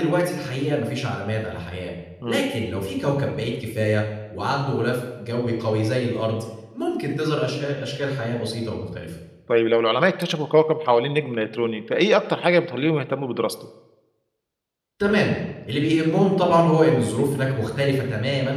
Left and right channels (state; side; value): identical; both; correlation 1.00